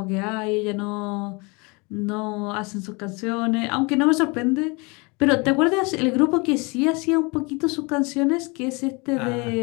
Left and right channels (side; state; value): right; quieter; 28.6 dB